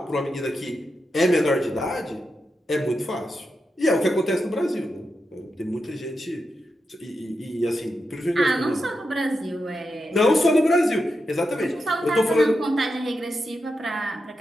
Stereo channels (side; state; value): both; normal; correlation 0.87